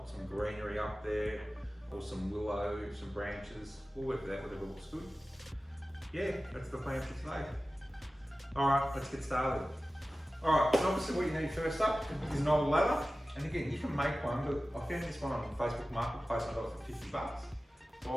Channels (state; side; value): normal; both; correlation 0.96